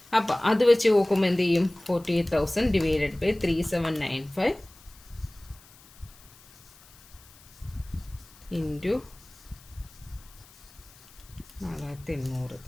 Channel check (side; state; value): left; noise; hiss, 24 dB below the sound